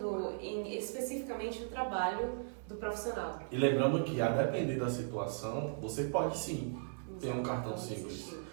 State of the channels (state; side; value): silent; left; 53 dB below the other